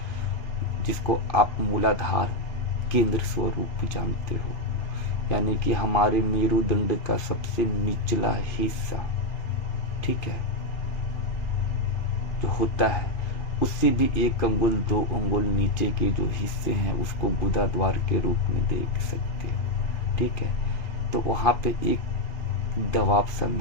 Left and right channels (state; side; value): late; right; 3.0 ms